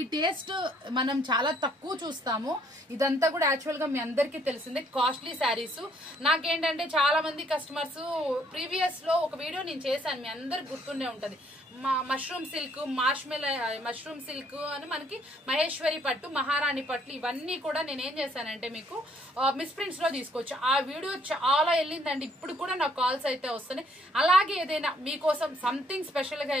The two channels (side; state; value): both; normal; correlation 0.65